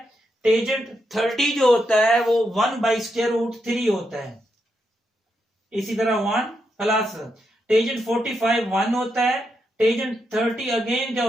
टेंजेंट 30 जो होता है वो 1 बाई स्क्वायर रूट 3 होता है। इसी तरह 1 प्लस टेंजेंट 45 1 होता है, टेंजेंट 30 अगेन क्या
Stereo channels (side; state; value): both; normal; correlation 0.82